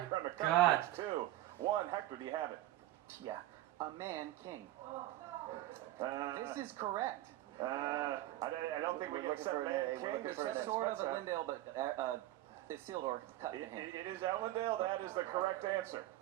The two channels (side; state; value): left; quieter; 15.1 dB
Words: to God. come. 2, 1. Hector, do you have it? Yeah. A man king. This This is correct. I don't think we can accept for an Man A. We're King. looking This for an is A. Sword of Smets. Elendil, but Isildur cut the hand. It is Elendil. That is the correct answer.